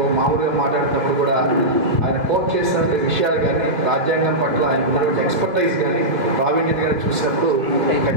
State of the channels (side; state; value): left; late; 2.7 ms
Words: మామూలుగా మాట్లాడుతున్నప్పుడు కూడా ఆయన కోట్ చేసిన విషయాలు కానీ, రాజ్యాంగం పట్ల ఆయన ఉన్నటువంటి ఎక్స్పర్టైజ్ కానీ, ప్రావీణ్యత కానీ చూసినప్పుడు